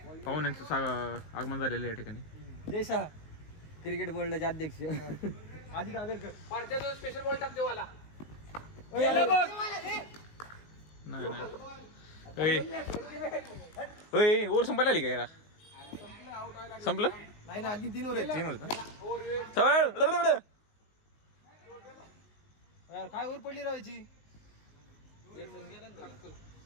पाहून यांचं आगमन झालेलं या ठिकाणी. जयशा क्रिकेट बोर्डाचे अध्यक्ष अजित आगरकर. स्पेशल बॉल टाकते वाला. नाही ओव्हर संपायला आली का याला? संपलं नाही ना आधी 3 ओव्हर. 3 होत यार काय ओव्हर पडली राहायची.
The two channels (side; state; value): right; late; 19 ms